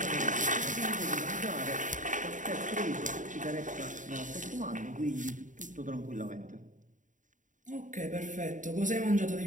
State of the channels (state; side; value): late; left; 0.37 ms